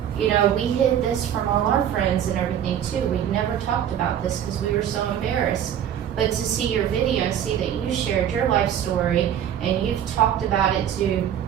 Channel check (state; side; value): quieter; left; 9.8 dB